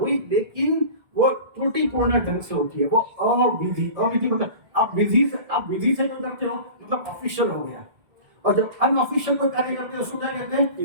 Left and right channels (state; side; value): late; left; 1.7 ms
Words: लेकिन वो त्रुटिपूर्ण ढंग से होती है, वो अविधि। अविधि मतलब आप विधि से जो करते हो मतलब ऑफिशियल हो गया, और जब अनऑफिशियल कोई कार्य करते हो उसको क्या कहते हैं?